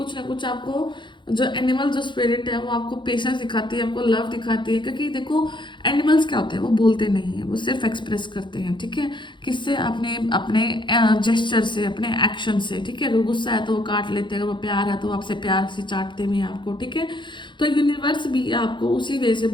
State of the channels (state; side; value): late; right; 0.23 ms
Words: ना कुछ आपको जो एनिमल जो स्पिरिट है वो आपको पेशेंस दिखाती है, आपको लव दिखाती है। क्योंकि देखो एनिमल्स क्या होते हैं, वो बोलते नहीं है, वो सिर्फ एक्सप्रेस करते हैं, ठीक है। किससे? अपने अपने जेस्चर से, अपने एक्शन से, ठीक है। अगर गुस्सा है तो वो काट लेते हैं, अगर वो प्यार है तो वो आपसे प्यार से चाटते भी हैं आपको, ठीक है। तो यूनिवर्स भी आपको उसी वे से